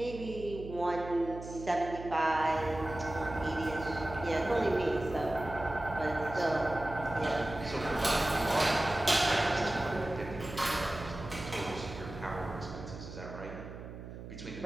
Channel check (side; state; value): right; noise; hum, 11 dB below the sound